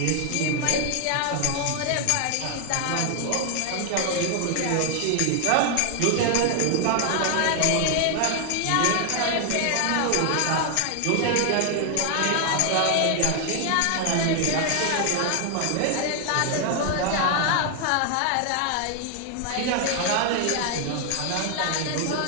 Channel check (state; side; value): different; both; correlation 0.00